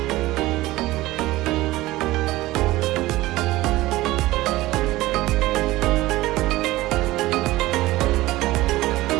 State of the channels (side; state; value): left; quieter; 17.9 dB